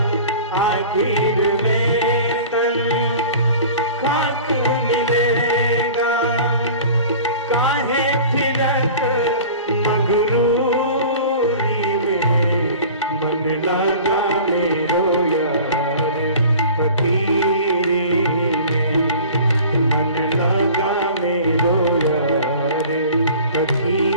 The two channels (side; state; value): both; inverted; correlation -0.42